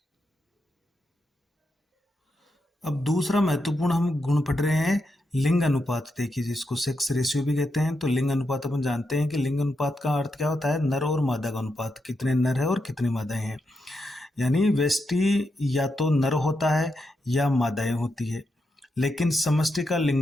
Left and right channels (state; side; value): normal; both; correlation 0.84